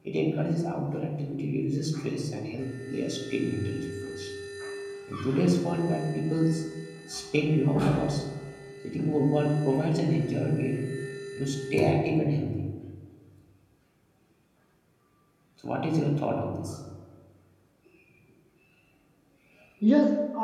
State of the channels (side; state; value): both; identical; correlation 1.00